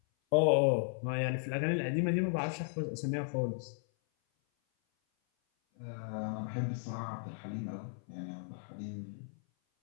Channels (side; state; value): right; silent; 54 dB below the other